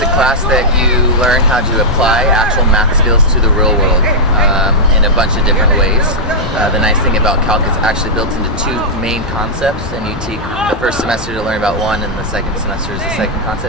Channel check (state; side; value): normal; both; correlation -0.07